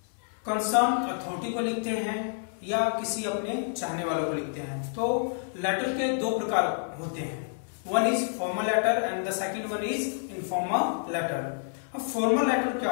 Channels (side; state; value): right; silent; 59 dB below the other